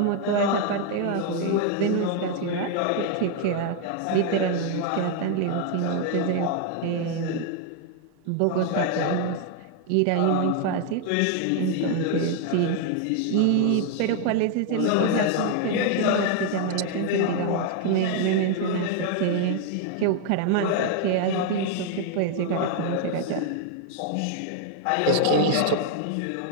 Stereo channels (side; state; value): both; different; correlation 0.00